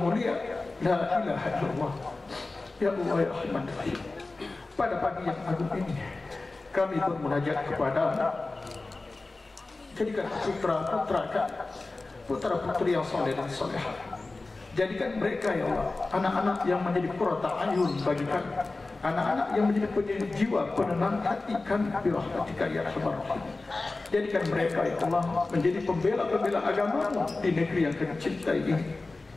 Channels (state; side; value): quieter; right; 3.4 dB